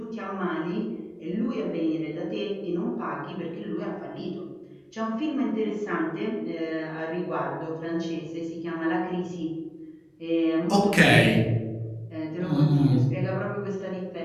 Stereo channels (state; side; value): identical; both; correlation 1.00